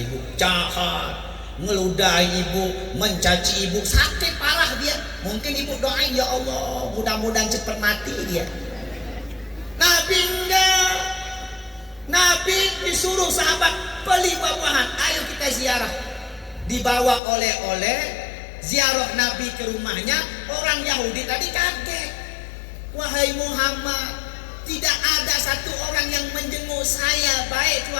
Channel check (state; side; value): drops out; right; at 17.2 s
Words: jahat, ngeludahi ibu, mencaci ibu, sakit parah dia. Mungkin ibu doain, ya Allah mudah-mudahan cepat mati dia. Nabi enggak. Nabi disuruh sahabat beli buah-buahan, ayo kita ziarah. Dibawa oleh-oleh, ziarah Nabi ke rumahnya. Orang Yahudi tadi kaget. Wahai Muhammad, tidak ada satu orang yang menjenguk saya, baik